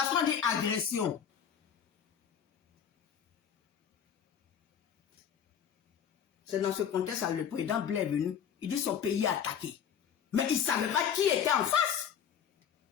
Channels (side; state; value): right; quieter; 8.3 dB